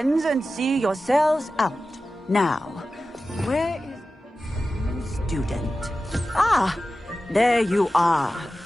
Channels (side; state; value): both; normal; correlation 0.94